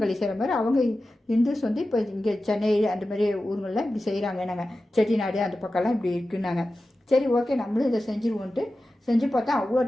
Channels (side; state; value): both; normal; correlation 0.94